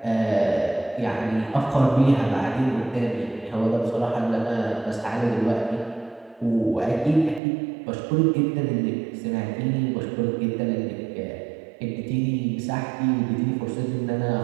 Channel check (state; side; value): drops out; left; at 7.4 s